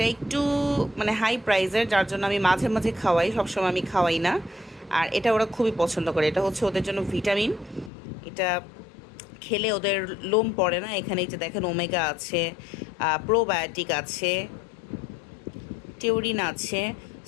একটু মানে হাই প্রাইসের, যার জন্য আমি মাঝে মাঝে খাওয়াই, সবসময় আমি খাওয়াই না। আর এটা ওরা খুবই পছন্দ করে। এটা হচ্ছে ওদের জন্য ভিটামিন। এটা খেলে ওদের লোম পড়ে না। এখানে এই যে দেখেন ওমেগা আছে, প্রোবায়োটিক আছে, টিউরিন আছে।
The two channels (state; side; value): drops out; right; at 7.9 s